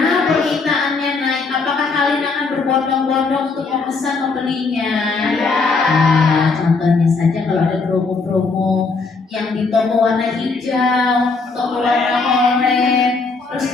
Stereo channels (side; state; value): right; quieter; 4.2 dB